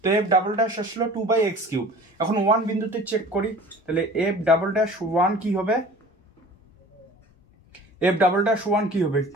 তো f" আসলো 2/x³। এখন 1 বিন্দুতে চেক করি, তাহলে f" কি হবে, f" কি হবে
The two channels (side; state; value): both; normal; correlation 0.44